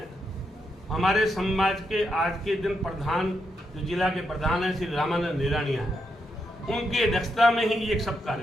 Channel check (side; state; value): both; normal; correlation 0.82